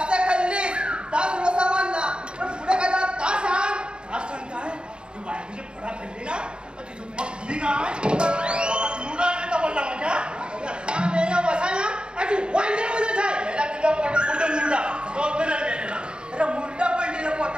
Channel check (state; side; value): late; left; 0.051 ms